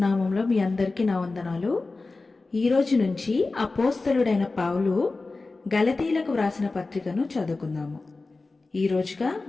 నామంలో మీ అందరికీ నా వందనాలు. ఈరోజు నుంచి అపోస్తలుడైన పౌలు గలతీలకు వ్రాసిన పత్రికను చదువుకుందాము. ఈరోజుగా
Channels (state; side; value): quieter; right; 3.6 dB